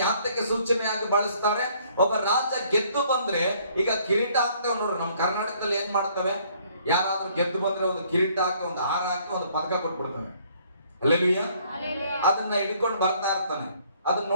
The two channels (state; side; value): inverted; both; correlation -0.62